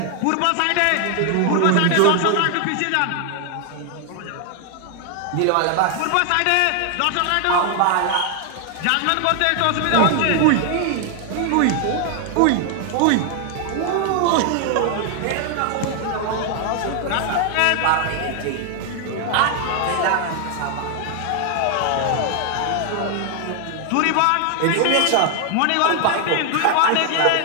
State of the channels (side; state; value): both; different; correlation 0.00